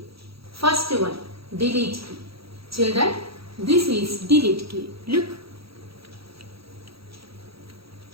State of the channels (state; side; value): late; left; 0.76 ms